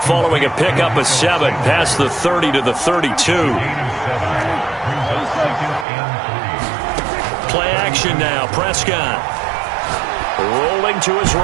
following a pickup of 7 past the 30 to the 32. Play action now. Prescott. Rolling to his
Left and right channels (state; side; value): drops out; left; at 5.9 s